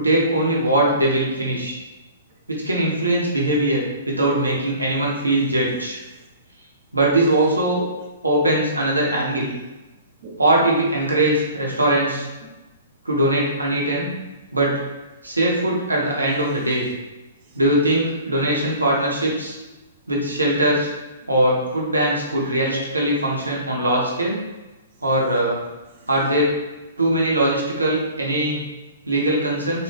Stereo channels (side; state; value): both; inverted; correlation -0.47